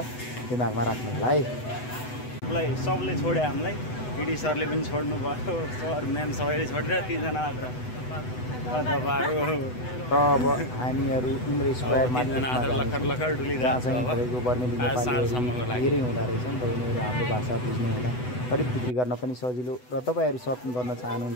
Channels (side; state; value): right; late; 8.0 ms